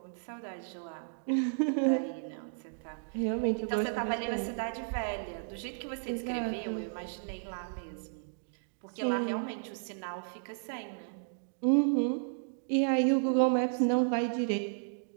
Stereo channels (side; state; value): left; silent; digital silence